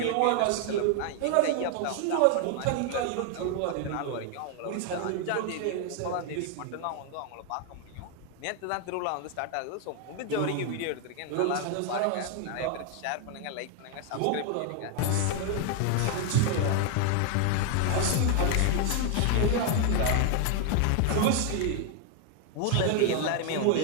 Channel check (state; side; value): different; both; correlation 0.00